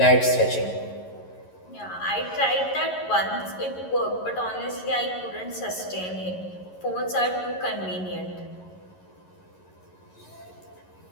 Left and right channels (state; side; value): late; right; 11 ms